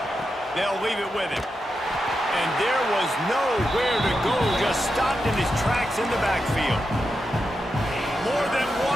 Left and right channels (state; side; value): normal; both; correlation 0.88